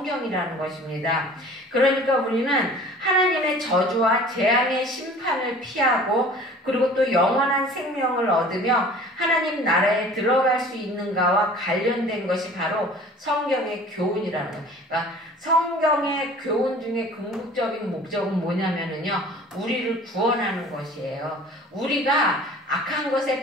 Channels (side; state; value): both; normal; correlation 0.46